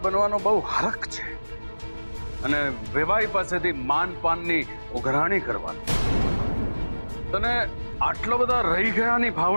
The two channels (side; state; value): both; inverted; correlation -1.00